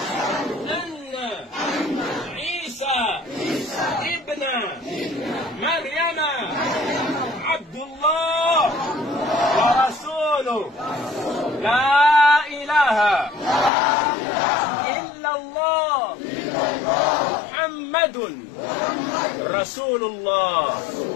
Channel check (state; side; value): drops out; right; at 13.7 s